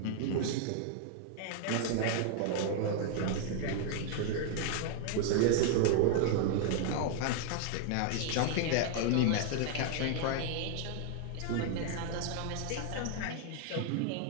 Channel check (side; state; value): both; different; correlation 0.00